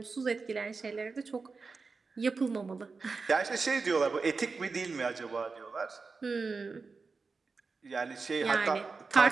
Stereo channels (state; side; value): quieter; left; 4.4 dB